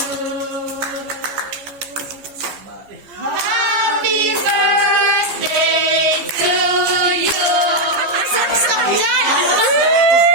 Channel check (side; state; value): left; late; 15 ms